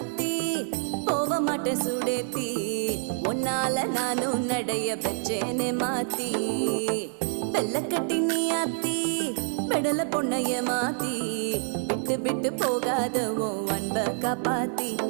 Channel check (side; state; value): left; silent; 60 dB below the other